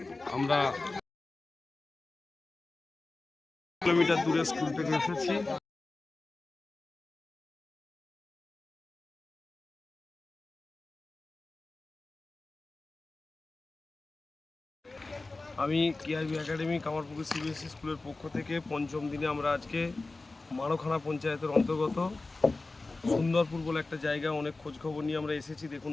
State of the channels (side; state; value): right; quieter; 3.4 dB